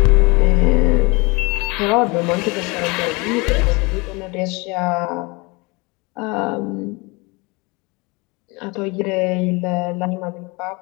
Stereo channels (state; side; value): quieter; right; 27.0 dB